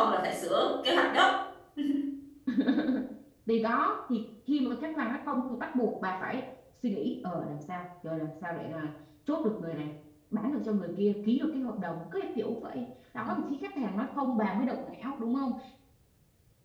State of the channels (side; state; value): both; identical; correlation 1.00